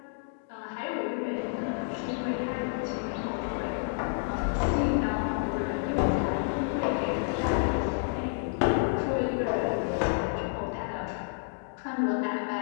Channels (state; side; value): silent; right; digital silence